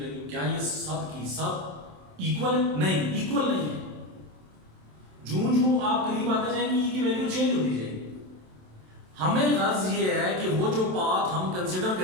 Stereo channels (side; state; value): left; late; 27 ms